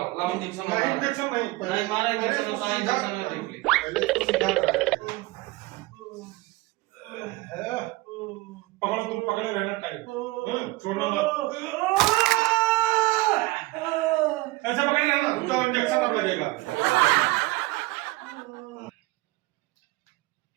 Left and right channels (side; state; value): left; quieter; 21.2 dB